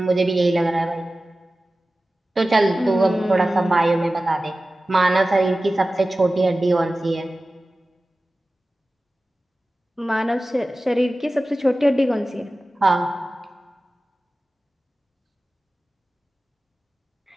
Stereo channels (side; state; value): both; normal; correlation 0.96